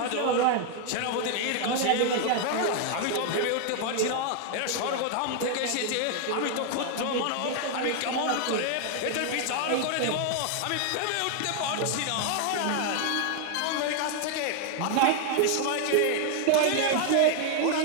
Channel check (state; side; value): different; both; correlation 0.00